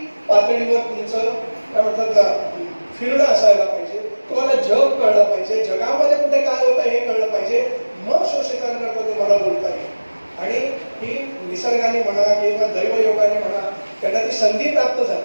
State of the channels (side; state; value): both; inverted; correlation -1.00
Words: पातळीवर तुमचं काय म्हणतात फिरणं असायला पाहिजे. तुम्हाला जग कळलं पाहिजे, जगामध्ये कुठे काय होतं हे कळलं पाहिजे, मग शोषितांकरता तुम्हाला बोलता येईल. आणि ही निसर्गाने म्हणा किंवा दैवयोगाने म्हणा त्यांना ती संधी प्राप्त